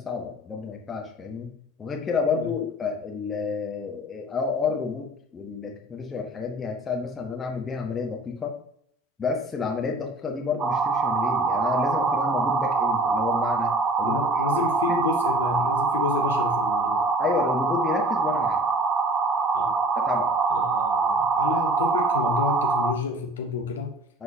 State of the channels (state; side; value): normal; both; correlation 0.46